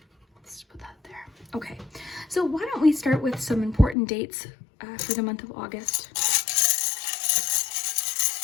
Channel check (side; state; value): right; drops out; at 4.0 s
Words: Let's put that there. Okay, so why don't we start with some important dates for the month of August.